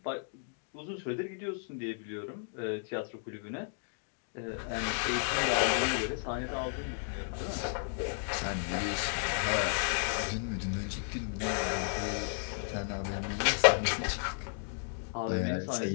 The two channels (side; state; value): right; silent; digital silence